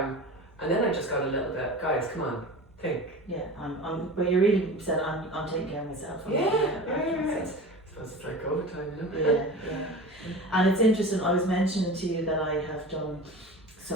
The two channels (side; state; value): both; normal; correlation 0.34